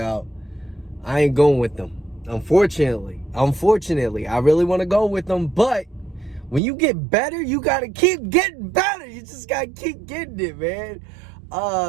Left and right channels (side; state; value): left; drops out; at 6.6 s